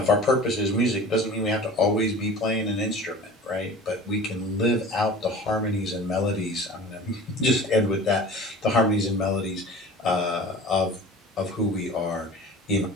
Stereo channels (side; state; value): both; normal; correlation 0.40